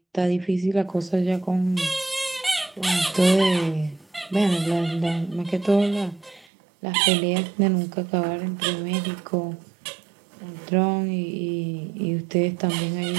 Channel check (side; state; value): left; drops out; at 6.5 s